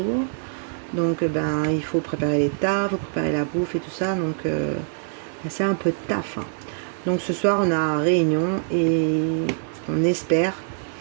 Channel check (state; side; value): silent; left; 60 dB below the other